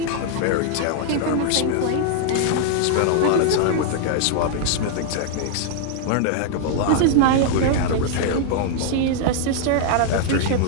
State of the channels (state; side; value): different; both; correlation 0.00